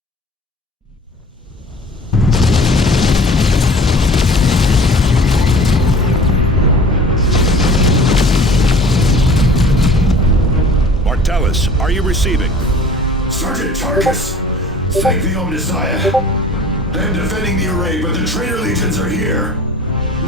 Martellus, are you receiving? Sergeant Tarkus, thank the Omnissiah. I'm defending the array, but the traitor legions are here.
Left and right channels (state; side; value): normal; both; correlation 0.45